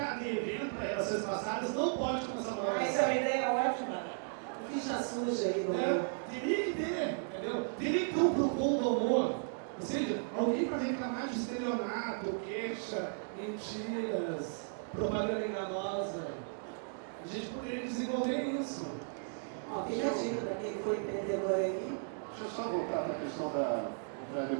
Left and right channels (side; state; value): left; silent; digital silence